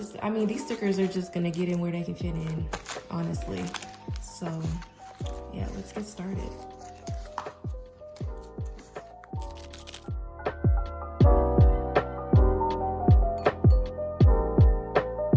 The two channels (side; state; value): both; identical; correlation 1.00